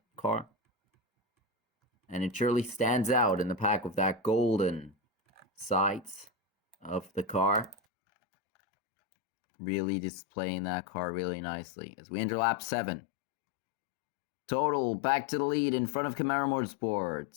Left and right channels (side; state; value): right; drops out; at 7.8 s